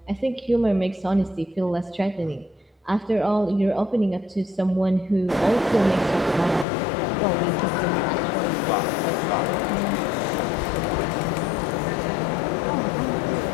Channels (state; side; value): drops out; right; at 6.7 s